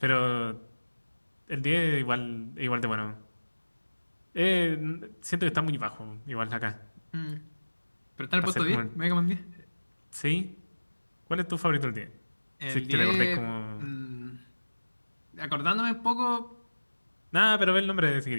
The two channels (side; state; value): both; inverted; correlation -1.00